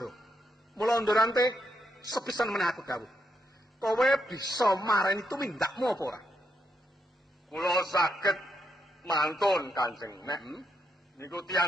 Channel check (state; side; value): normal; both; correlation 0.80